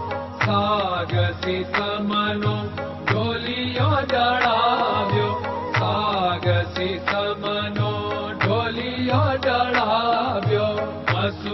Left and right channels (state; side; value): identical; both; correlation 1.00